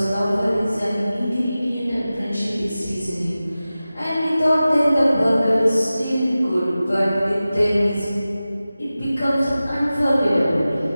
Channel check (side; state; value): both; inverted; correlation -0.96